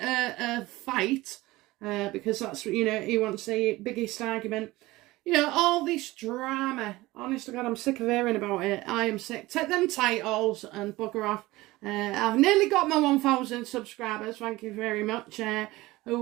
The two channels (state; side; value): quieter; left; 19.2 dB